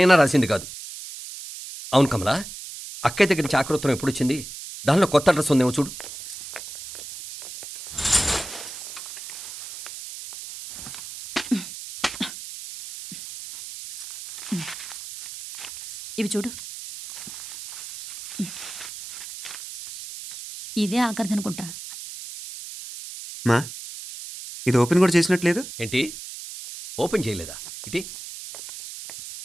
రాసింది కాదు. అవును కమలా, అక్కయ్య దగ్గర నుంచి ఆకృతం ఎప్పుడు వచ్చింది? దానిలో కొత్త అడ్రస్ ఉందేమో చూడు. ఇవి చూడు. ఇదే ఆఖరిదనుకుంటా. మా ఇది ఓపెన్ కూడా చేసినట్లేదు. ఏంటి ఓపెన్ చేయలేదా? ఇటీ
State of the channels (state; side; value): noise; right; hiss, 11 dB below the sound